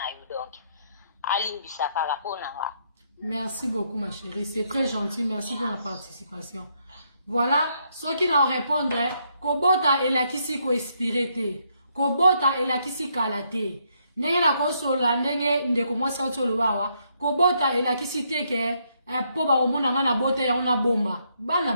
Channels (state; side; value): inverted; both; correlation -0.74